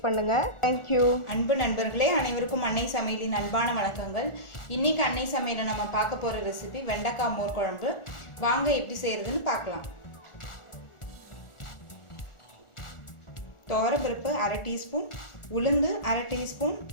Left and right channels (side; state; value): right; late; 1.4 ms